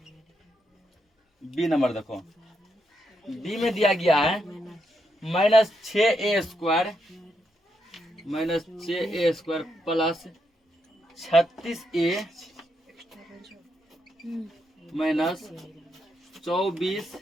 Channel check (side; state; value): both; normal; correlation 0.81